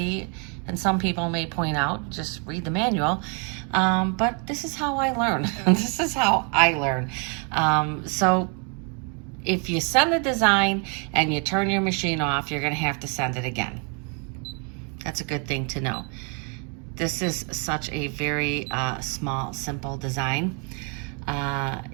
and some people may point out, just read the manual, but this is how I learn. This is how I learn. So if you send the design and you turn your machine off, you're gonna have to send it again. That's a good thing to know. This is such a very small, simple design.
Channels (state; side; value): quieter; left; 36.6 dB